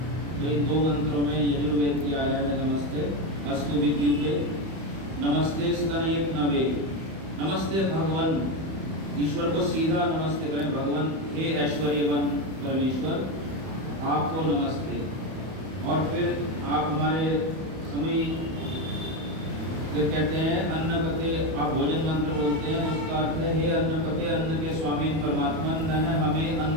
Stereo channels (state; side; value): late; left; 31 ms